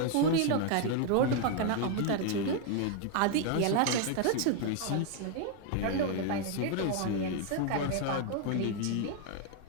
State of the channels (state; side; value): different; both; correlation 0.00